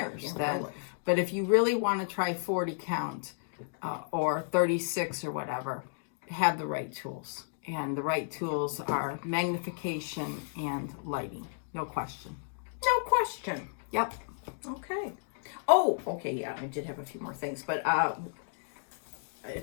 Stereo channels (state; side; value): silent; right; digital silence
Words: Yeah, then? really. But if you really want to try 40 count or 36 or whatever, have the right tools. And the right tools are magnification and lighting. No question. No question. Yep. Okay. Oh, okay, yeah, I did have a few more things, but